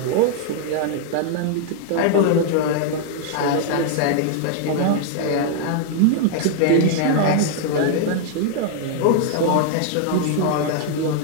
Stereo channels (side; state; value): both; different; correlation 0.00